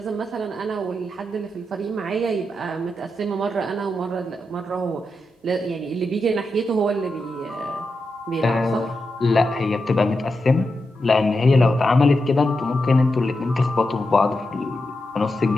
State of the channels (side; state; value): both; normal; correlation 0.87